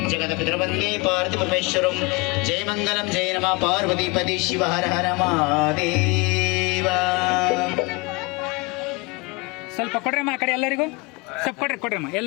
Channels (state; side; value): quieter; right; 27.0 dB